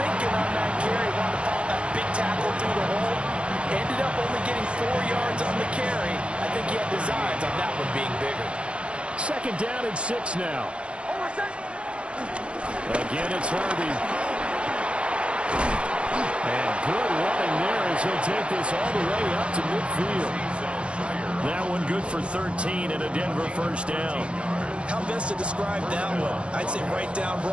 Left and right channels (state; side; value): late; left; 0.058 ms